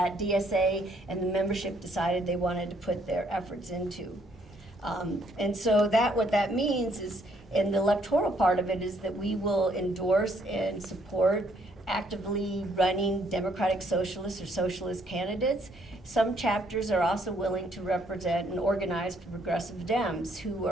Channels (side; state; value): both; normal; correlation 0.68